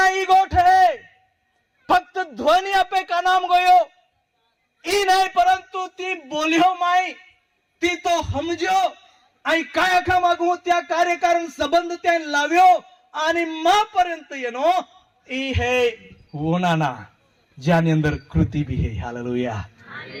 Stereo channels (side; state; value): both; identical; correlation 1.00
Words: गोठ है फक्त ध्वनि आपे का नाम गयो ई नाही, परंतु ती बोलियो माई ती तो समजो आणि काय आखा मागू त्या कार्यकारण संबंध त्या लाव्यो आणि मा पर्यंत येनो ई है वोनाना ज्यानी अंदर कृति भी है. हालेलुया.